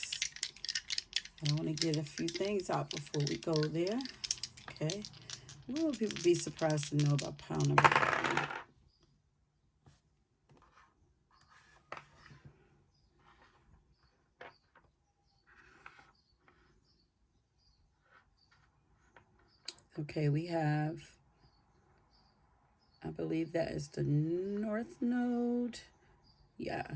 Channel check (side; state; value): both; identical; correlation 1.00